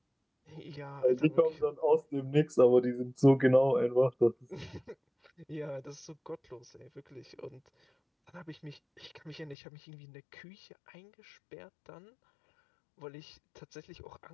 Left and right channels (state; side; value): drops out; right; at 9.6 s